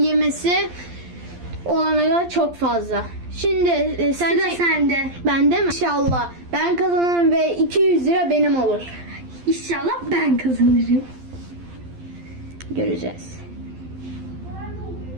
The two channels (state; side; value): late; left; 12 ms